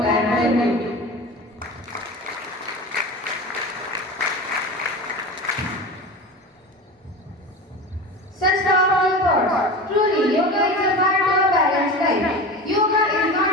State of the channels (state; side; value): normal; both; correlation 0.30